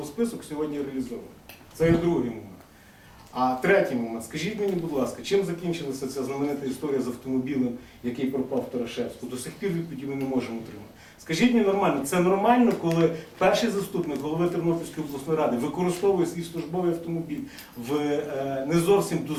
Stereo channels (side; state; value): both; identical; correlation 1.00